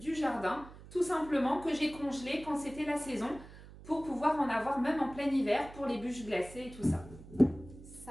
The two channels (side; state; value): right; noise; hum, 17 dB below the sound